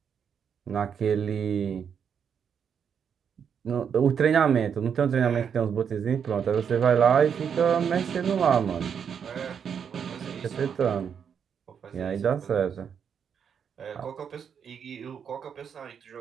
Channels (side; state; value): left; quieter; 7.4 dB